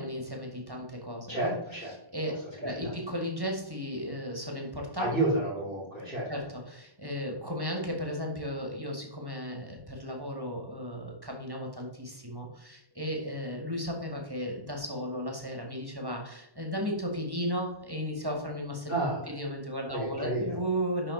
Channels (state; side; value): late; left; 1.1 ms